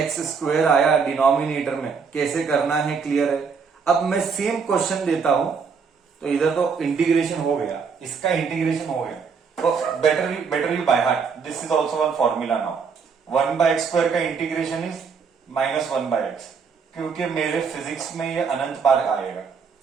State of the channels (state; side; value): quieter; left; 5.7 dB